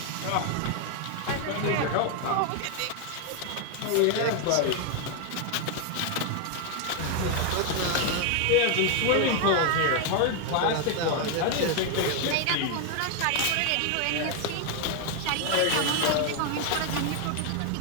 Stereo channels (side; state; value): both; different; correlation 0.01